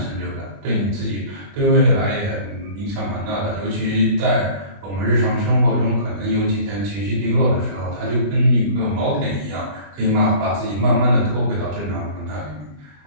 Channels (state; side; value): late; left; 20 ms